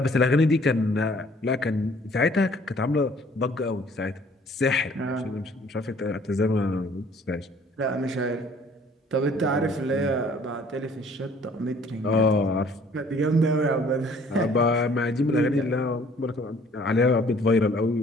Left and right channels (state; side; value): normal; both; correlation 0.57